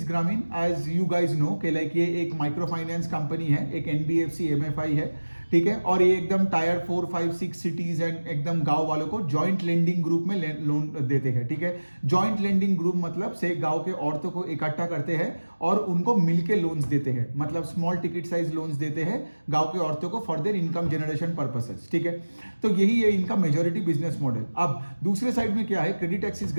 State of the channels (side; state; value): both; inverted; correlation -1.00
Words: ग्रामीण। एज यू गाइज नो कि लाइक ये एक माइक्रो फाइनेंस कंपनी है, एक एनबीएफसी एमएफआई है, ठीक है। और ये एकदम टायर 4, 5, 6 सिटीज एंड एकदम गांव वालों को जॉइंट लेंडिंग ग्रुप में लोन देते हैं, ठीक है। जॉइंट लेंडिंग ग्रुप मतलब से गांव के औरतों को इकट्ठा करते हैं और उनको मिलके लोन्स देते हैं, मतलब स्मॉल टिकट साइज लोन्स देते हैं गांव के औरतों को for their income generation purposes, ठीक है। तो यही है इनका मेजोरिटी बिजनेस मॉडल। अब दूसरे साइड में क्या है, क्रेडिट एक्सिस